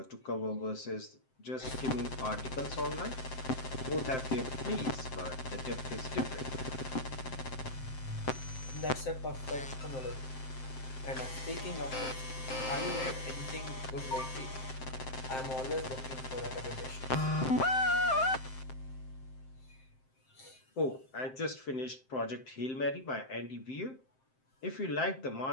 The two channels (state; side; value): late; right; 7.7 ms